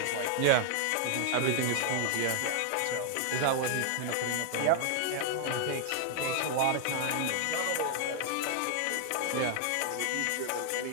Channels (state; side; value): different; both; correlation 0.00